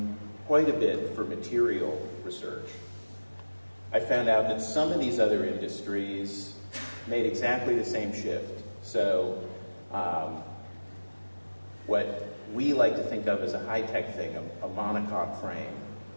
quite a bit for material research, I found out that some of these other industries made exactly the same shift. So what we like to think of as a high-tech thing, a monocoque frame,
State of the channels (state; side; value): inverted; both; correlation -1.00